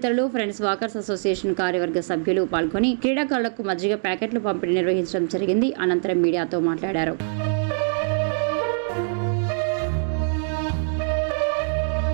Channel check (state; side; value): silent; left; digital silence